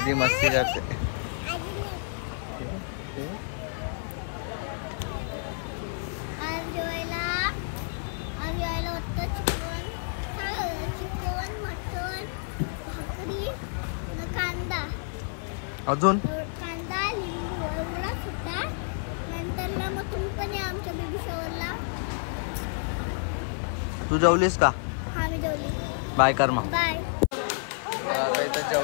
मस्ती करते. आज जेवायला होतं चिकन, मटन, भाकरी न कांदा. अजून कांदा लिंबू एवढाच होता. नंतरला मग तुम्ही पण या आमच्या बेबी शॉवरला. तू जेवलीस का? हा मी जेवली. बाय कर मग. बाय. आता इथं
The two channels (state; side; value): silent; right; 58 dB below the other